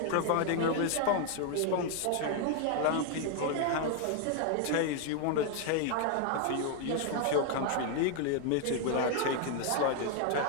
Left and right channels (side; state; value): both; different; correlation 0.00